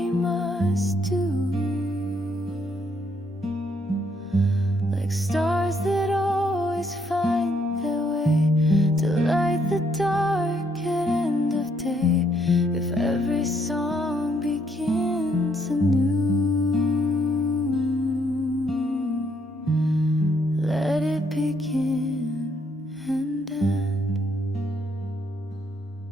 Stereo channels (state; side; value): normal; both; correlation 0.71